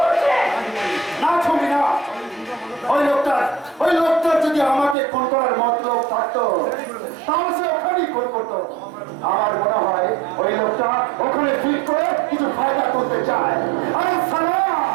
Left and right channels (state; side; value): drops out; left; at 5.0 s